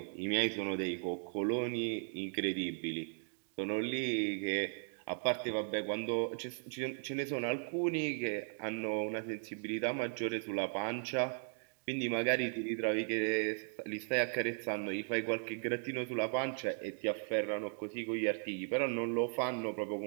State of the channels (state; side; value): silent; left; 53 dB below the other